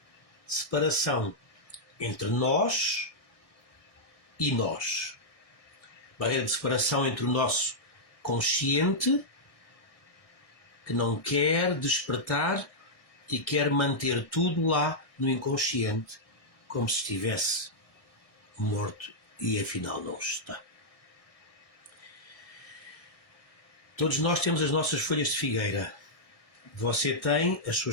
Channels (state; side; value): late; right; 1.6 ms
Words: de separação entre nós e nós. Barreira de separação entre o nosso consciente, que não quer despertar e quer manter tudo lá no inconsciente, como se estivesse morto e afinal não está. Todos nós temos as nossas folhas de figueira. Você tem as